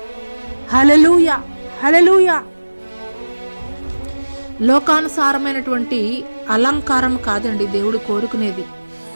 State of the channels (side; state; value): both; inverted; correlation -1.00